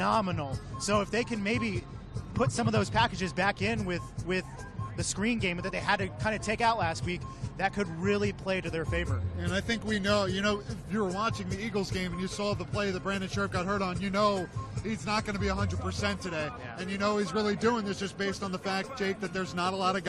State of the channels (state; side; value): identical; both; correlation 1.00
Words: So if they can maybe put some of those packages back in with the screen game that they had to kind of take out last week, that could really play to their favor. And I think we know, if you were watching the Eagles game and you saw the play that Brandon Sheriff got hurt on, he's not going to be 100% today. Yeah. And he's really doing this just based on the fact, Jake, that there's not a lot of